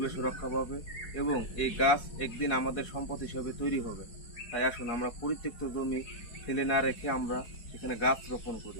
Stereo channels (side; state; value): right; late; 4.7 ms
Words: রক্ষা পাবে এবং এই গাছ একদিন আমাদের সম্পদ হিসেবে তৈরি হবে। তাই আসুন আমরা পরিত্যক্ত জমি ফেলে না রেখে আমরা এখানে গাছ রোপণ করি।